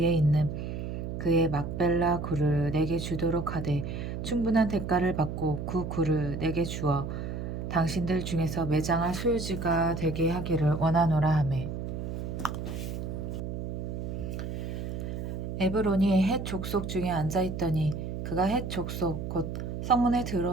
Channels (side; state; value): right; noise; hum, 5 dB below the sound